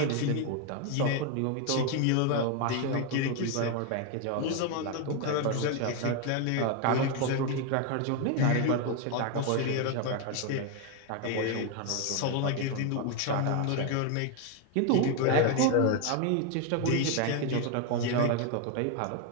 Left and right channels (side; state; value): both; different; correlation 0.01